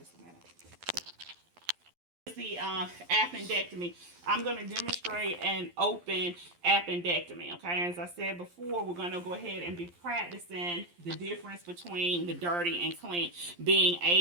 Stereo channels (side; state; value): left; late; 11 ms